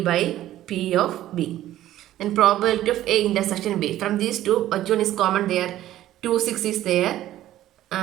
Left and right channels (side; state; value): left; quieter; 13.6 dB